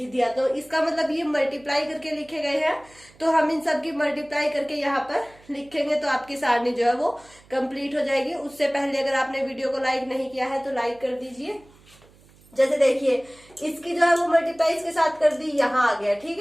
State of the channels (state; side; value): noise; right; hum, 27 dB below the sound